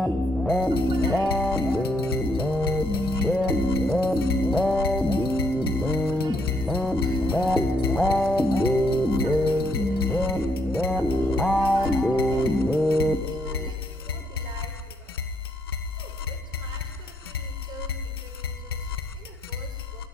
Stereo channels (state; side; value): normal; both; correlation 0.73